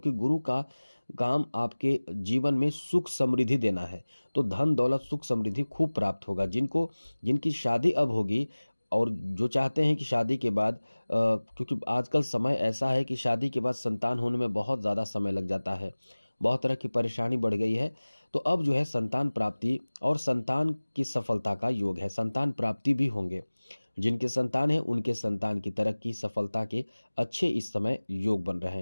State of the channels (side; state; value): both; inverted; correlation -1.00